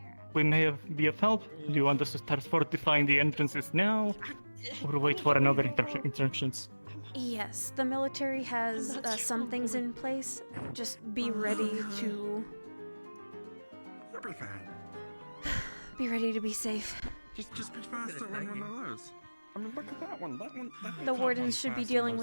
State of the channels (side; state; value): both; inverted; correlation -1.00